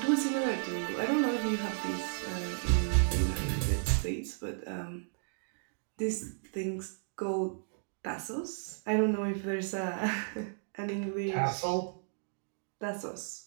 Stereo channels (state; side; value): silent; left; digital silence